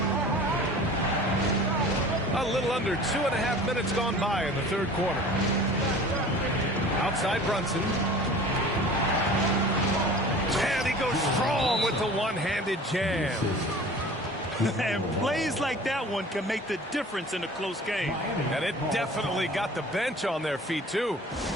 A little under 2.5 minutes gone by in the third quarter. Outside Brunson. And he goes strong with the one-handed jam. And plays like that one can make the difference in a close game. And it definitely got the bench on their feet, too.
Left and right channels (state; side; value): normal; both; correlation 0.43